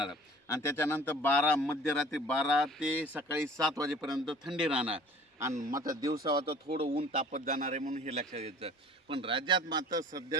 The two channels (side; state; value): both; normal; correlation 0.48